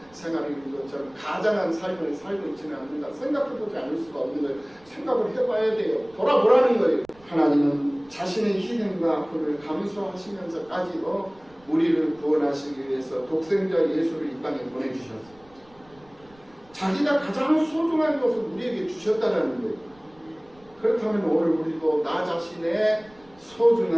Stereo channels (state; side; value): noise; right; rumble, 29 dB below the sound